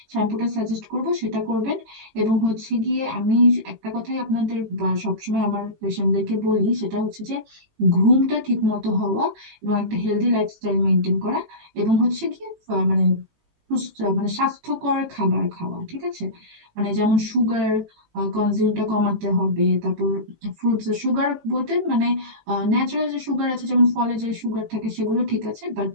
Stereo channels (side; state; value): left; late; 19 ms